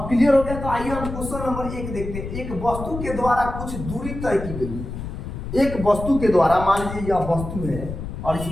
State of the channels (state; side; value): noise; left; rumble, 8 dB below the sound